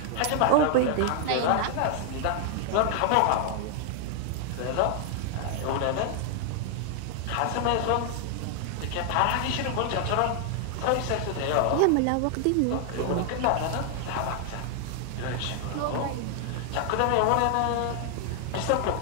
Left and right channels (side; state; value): both; different; correlation 0.00